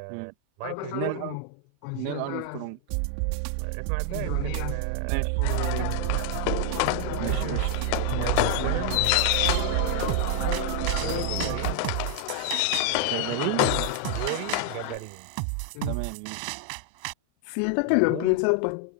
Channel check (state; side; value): different; both; correlation 0.00